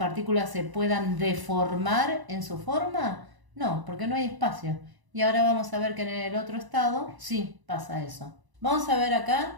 se puedan deformar en su forma? No, porque no hay espacio. Y ahora vamos a ver que en el otro estado sí pasa eso. Vamos a ver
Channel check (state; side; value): late; left; 1.0 ms